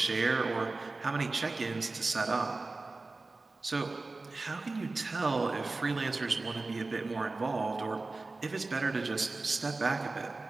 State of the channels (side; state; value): left; quieter; 3.5 dB